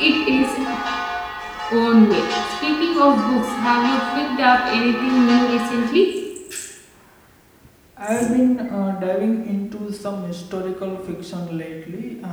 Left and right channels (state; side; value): identical; both; correlation 1.00